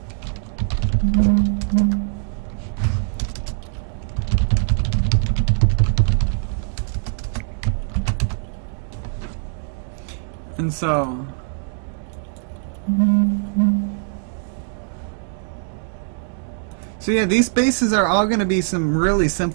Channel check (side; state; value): left; silent; digital silence